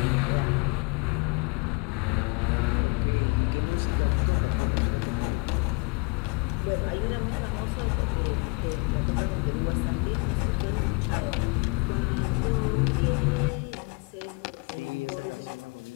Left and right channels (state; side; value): quieter; right; 31.5 dB